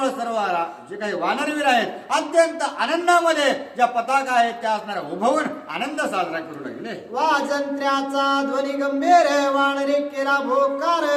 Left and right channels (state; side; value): identical; both; correlation 1.00